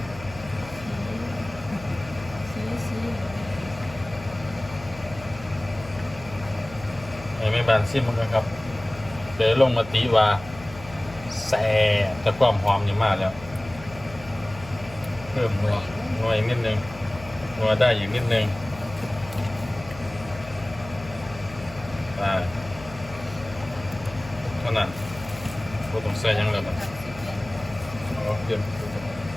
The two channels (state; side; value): noise; left; hum, 15 dB below the sound